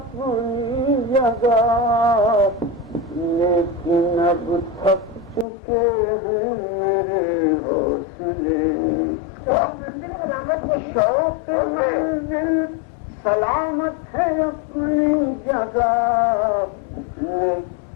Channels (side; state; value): right; drops out; at 5.5 s